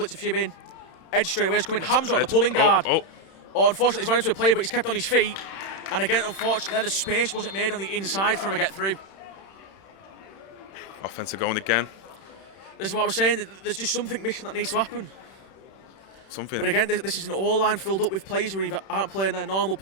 a few in. Edge straight away is coming. Hamza on the pulling guard. Unfortunately, he's run into a player, but he's kept on his feet. And again, unfortunately, there the space wasn't made on the inside for him to get through. Offensive going again. This is what I was saying. There's just something missing that needs to happen. But again, this is an O-line filled up with players who either aren't playing their normal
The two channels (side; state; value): right; late; 31 ms